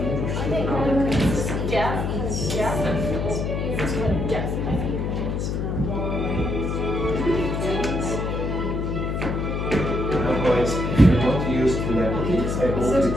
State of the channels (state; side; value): noise; left; hum, 1 dB below the sound